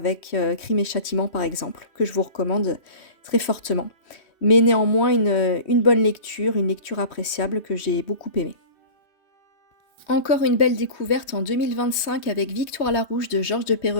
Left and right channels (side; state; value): right; late; 3.2 ms